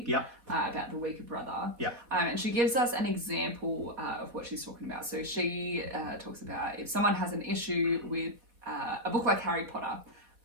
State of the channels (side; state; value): left; late; 3.9 ms